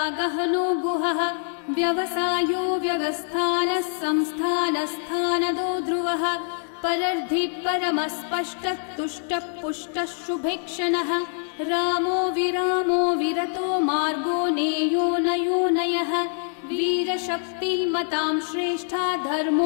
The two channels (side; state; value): right; silent; 62 dB below the other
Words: गहनो गुहः व्यवसायो व्यवस्थानः संस्थानस्थानदो ध्रुवः परर्धि परमस्पष्टः तुष्टः पुष्टः शुभेक्षणः रामो विरामो विरतो मार्गो नेयो नयो नयः वीरशक्तिमतां श्रेष्ठा